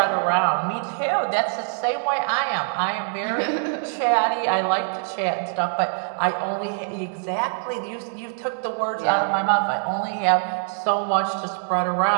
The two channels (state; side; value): silent; left; 63 dB below the other